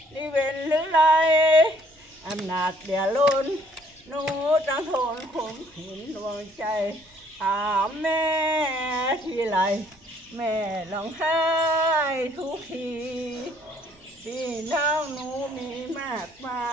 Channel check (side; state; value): both; normal; correlation 0.62